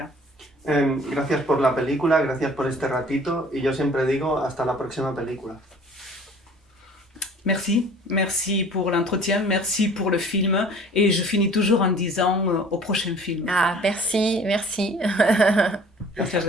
Gracias por la película, gracias por este ratito, y yo siempre digo hasta la próxima película. Merci pour l'entretien, merci pour le film, et je finis toujours en disant au prochain film. Ah, merci. Muchas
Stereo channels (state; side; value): normal; both; correlation 0.49